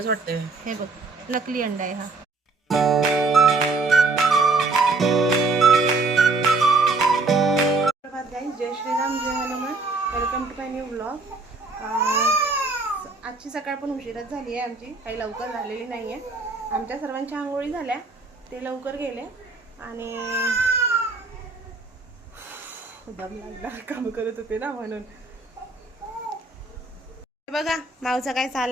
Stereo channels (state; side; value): quieter; left; 3.7 dB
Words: वाटतंय. हे बघ, नकली अंडा आहे हा. जय श्रीराम, जय Hanuman. Welcome to my new blog. आजची सकाळ पण उशिराच झाली आहे आमची, काही लवकर झालेली नाही आहे. आमच्या सर्वांच्या आंघोळी झाल्या, ते लवकर गेले आणि दम लागला, काम करत होते ना म्हणून. बघा माऊचा काय